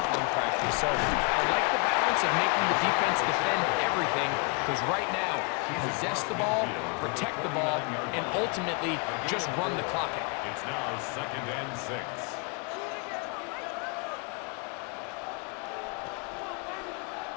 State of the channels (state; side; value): quieter; right; 33.0 dB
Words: practice. So I like the balance of making the defense defend everything, because right now, possess the ball, protect the ball, and ultimately just run the clock out. It's now 2nd and 6.